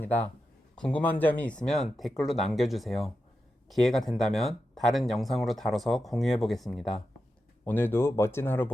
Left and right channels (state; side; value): normal; both; correlation 0.89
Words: 궁금한 점이 있으면 댓글로 남겨주세요. 기회가 된다면 다른 영상으로 다뤄서 공유해보겠습니다. 오늘도 멋진 하루